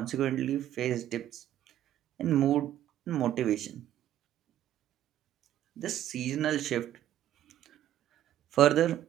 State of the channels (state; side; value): quieter; left; 12.1 dB